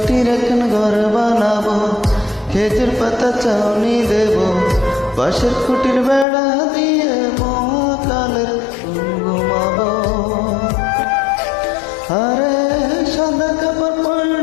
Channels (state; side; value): drops out; right; at 6.2 s